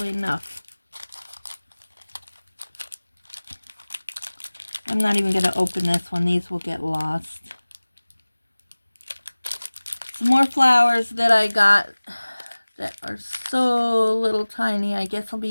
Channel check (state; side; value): inverted; both; correlation -1.00